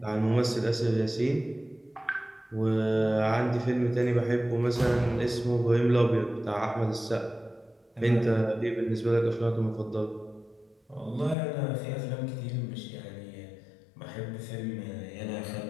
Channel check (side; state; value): right; drops out; at 11.4 s